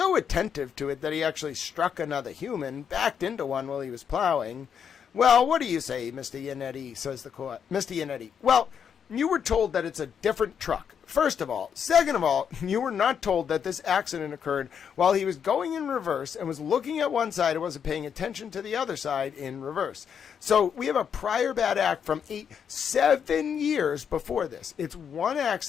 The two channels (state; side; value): quieter; right; 7.6 dB